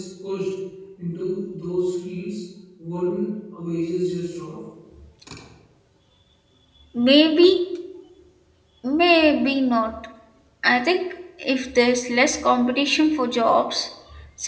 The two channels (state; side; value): identical; both; correlation 1.00